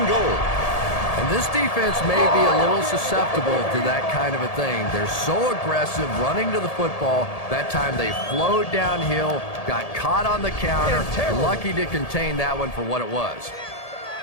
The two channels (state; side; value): late; right; 1.7 ms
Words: goal. And this defense may be a little susceptible to that kind of a thing. They're so aggressive running to the football. That time they flowed downhill, got caught on the counter, lucky to contain that one for what it was.